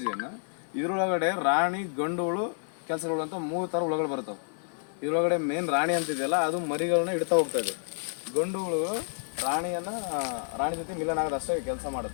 ಇದ್ರೊಳಗಡೆ ರಾಣಿ ಗಂಡುಗಳು ಕೆಲಸಗಳು ಅಂತ 3 ಥರ ಹುಳುಗಳು ಬರ್ತಾವೆ. ಇದ್ರೊಳಗಡೆ ಮೇನ್ ರಾಣಿ ಅಂತಿದೆಯಲ್ಲ ಅದು ಮರಿಗಳನ್ನ ಇಡ್ತಾ ಹೋಗ್ತದೆ. ಗಂಡುಗಳು ರಾಣಿ ಜೊತೆ ಮಿಲನ ಆಗೋದು ಅಷ್ಟೇ ಕೆಲಸ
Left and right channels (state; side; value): silent; right; 58 dB below the other